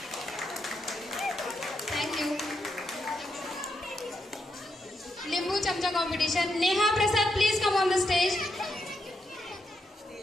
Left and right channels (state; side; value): normal; both; correlation 0.81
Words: Thank you. Limbu Chamcha competition. Neha Prasad, please come on the stage.